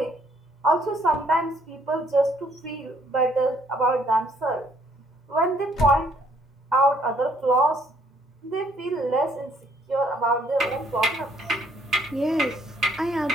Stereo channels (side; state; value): both; normal; correlation 0.66